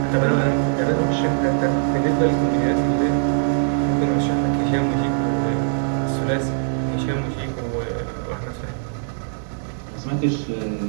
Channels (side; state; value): left; silent; digital silence